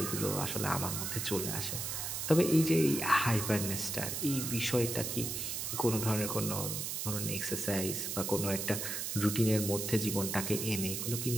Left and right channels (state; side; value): noise; right; hiss, 3 dB below the sound